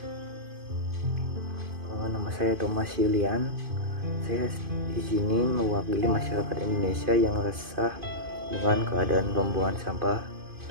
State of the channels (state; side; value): late; left; 2.5 ms